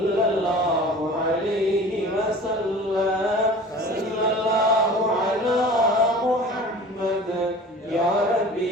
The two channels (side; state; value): both; normal; correlation 0.41